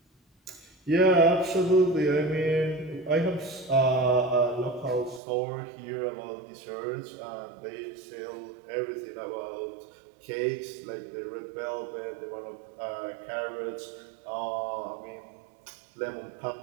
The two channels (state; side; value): drops out; left; at 5.2 s